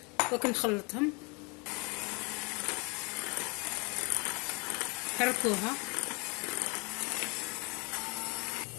دوك نخلطهم. حركوها.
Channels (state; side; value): quieter; right; 29.8 dB